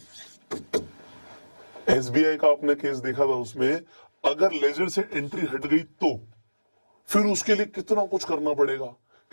एसबीआई का आपने केस देखा था, उसमें अगर लेजर से एंट्री हट गई तो फिर उसके लिए कितना कुछ करना पड़ेगा,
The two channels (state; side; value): inverted; both; correlation -1.00